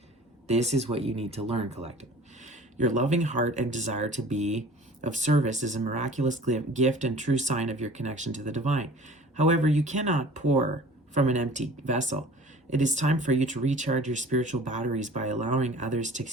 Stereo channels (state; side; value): normal; both; correlation 0.45